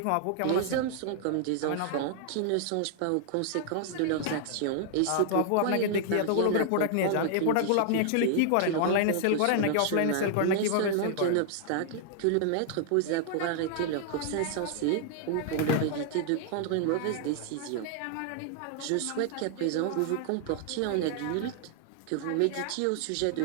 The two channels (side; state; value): both; different; correlation 0.00